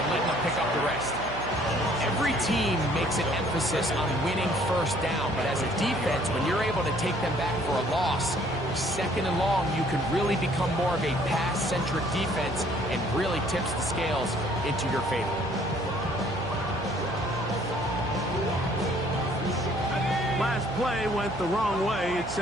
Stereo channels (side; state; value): right; noise; hum, 11 dB below the sound